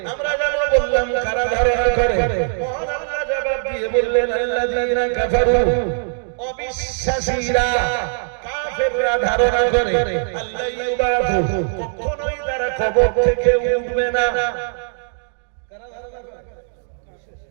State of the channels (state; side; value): silent; left; digital silence